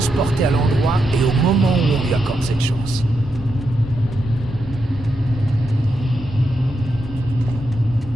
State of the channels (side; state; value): both; normal; correlation 0.84